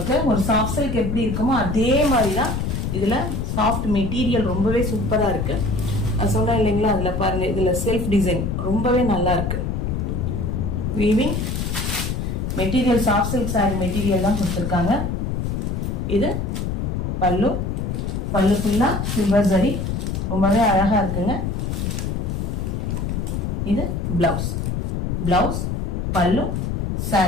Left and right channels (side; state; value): left; noise; rumble, 1 dB below the sound